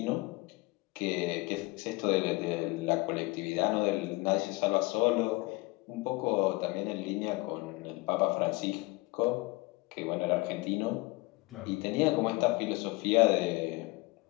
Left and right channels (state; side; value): quieter; right; 23.7 dB